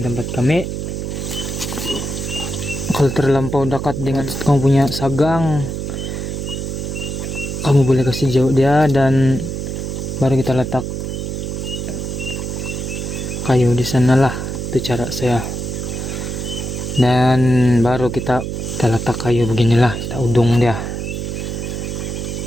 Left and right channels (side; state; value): right; noise; hum, 4 dB below the sound